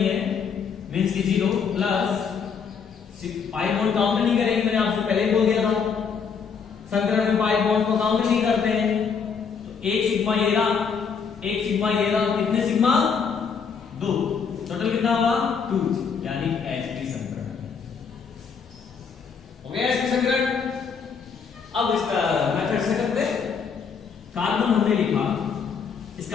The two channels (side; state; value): right; quieter; 6.2 dB